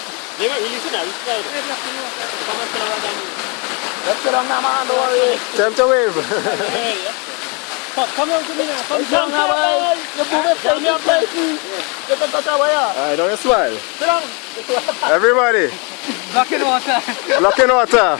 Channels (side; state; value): right; quieter; 32.7 dB